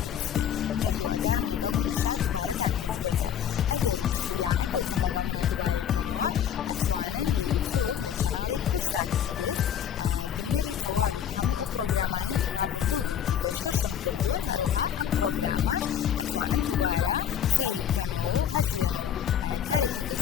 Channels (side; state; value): right; quieter; 9.1 dB